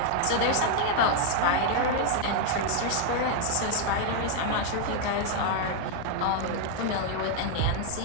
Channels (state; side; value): different; both; correlation 0.00